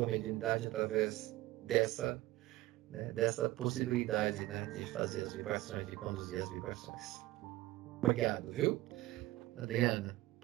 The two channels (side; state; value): left; quieter; 17.5 dB